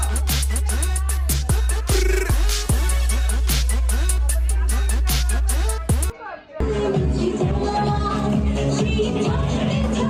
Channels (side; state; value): both; identical; correlation 1.00